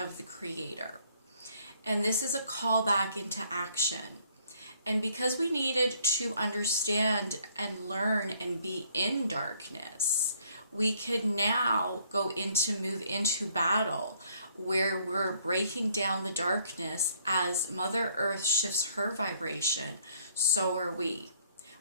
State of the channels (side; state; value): both; inverted; correlation -0.64